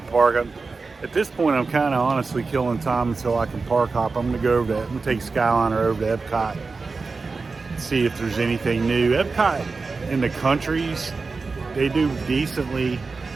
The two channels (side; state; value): left; quieter; 4.2 dB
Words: park. At this point, I'm kind of honestly killing time until I can park hop. I'm gonna go over that. I'm gonna take Skyliner over to Epcot, see if there's anything new. Epcot in the countries, they do decently